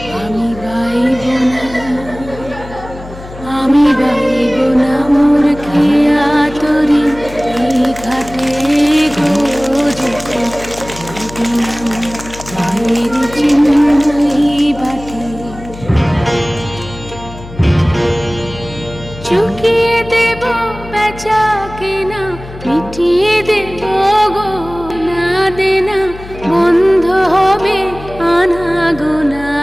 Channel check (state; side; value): noise; left; hum, 15 dB below the sound